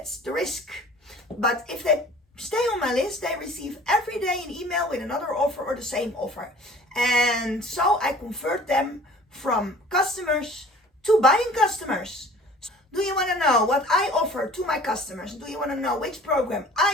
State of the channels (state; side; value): normal; both; correlation 0.48